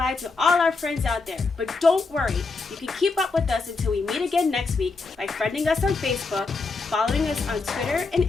to all our friends out there. But don't worry, you can keep up with us until we meet again next week by friending us on Facebook, following us on Twitter and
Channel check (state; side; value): quieter; right; 4.0 dB